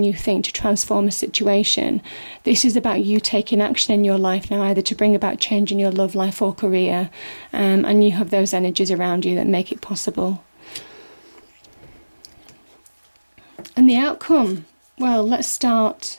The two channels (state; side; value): inverted; both; correlation -1.00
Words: you think to transform a situation. This is about you taking action in your life now, either to bring about change in your love life or career, and you have those energies around you that make it possible. And the outcome, well, let's start